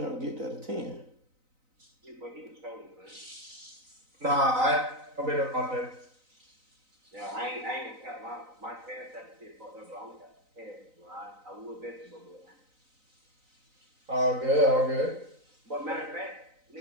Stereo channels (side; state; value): left; late; 3.9 ms